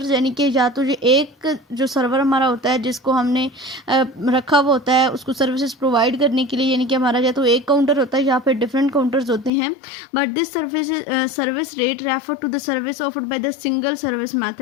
यानी कि या तो ये एक जो सर्वर हमारा होता है जिसको हमने रखा हुआ होता है उसको सर्विसेज प्रोवाइड करने के लिए, यानी कि हमारा या तो एक काउंटर होता है या फिर डिफरेंट काउंटर्स होते हैं। But this service rate refer to the service offered by the single service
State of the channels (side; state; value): right; drops out; at 9.5 s